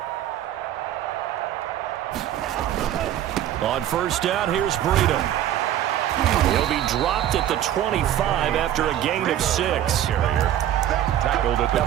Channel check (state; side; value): quieter; left; 11.7 dB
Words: On 1st down, here's Breida. He'll be dropped at the 25 after a gain of 6. Tackled at the